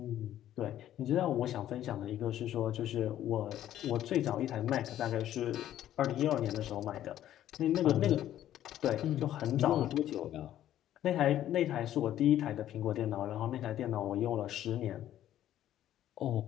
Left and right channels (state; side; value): quieter; right; 12.1 dB